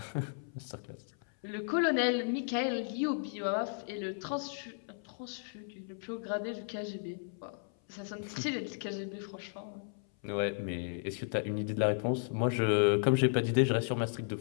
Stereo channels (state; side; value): silent; right; 55 dB below the other